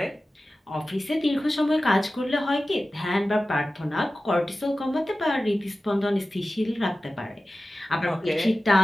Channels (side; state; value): both; normal; correlation 0.95